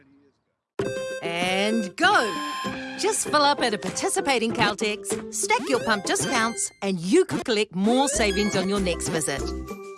years ago. And go! Just fill up at a participating Caltex, stack your pump discounts, and you could collect more savings on your next visit.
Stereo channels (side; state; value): both; identical; correlation 1.00